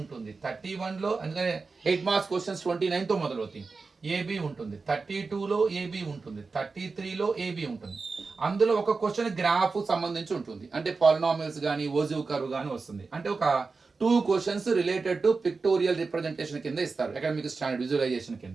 31లో అందుకనే 8 మార్క్స్ క్వశ్చన్స్ 29తో మొదలవుతాయి. ఏబి ఉంటుంది, 32లో ఏబి ఉంటుంది, 33లో ఏబి ఉంటుంది. అందులో ఒక క్వశ్చన్ గ్రాఫ్ సంబంధించి ఉంటుంది. అంటే పాలినామియల్స్ కానీ ఓజివ్ కర్వ్ కానీ వస్తుంది. అంటే ఒక 2 questions related to pictorial representation కింద ఇస్తారు, అకాడమిక్ స్టాండర్డ్ విజువలైజేషన్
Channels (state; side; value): quieter; left; 4.3 dB